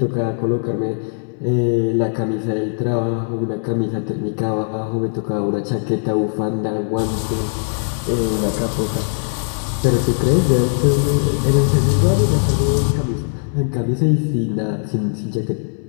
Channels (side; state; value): right; silent; 66 dB below the other